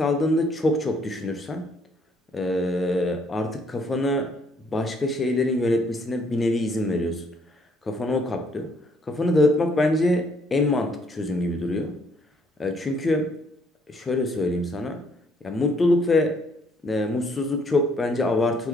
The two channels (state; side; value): normal; both; correlation 0.67